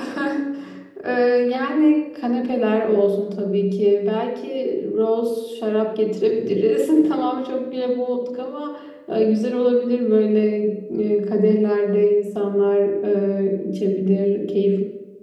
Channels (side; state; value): both; identical; correlation 1.00